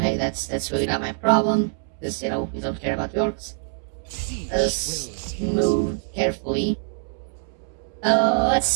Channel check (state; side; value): silent; left; 62 dB below the other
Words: that's really not my problem, because, you know, we don't care about the orcs. Let's move carefully.